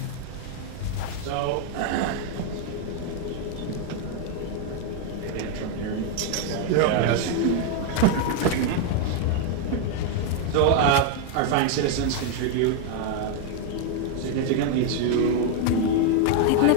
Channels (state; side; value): different; both; correlation 0.00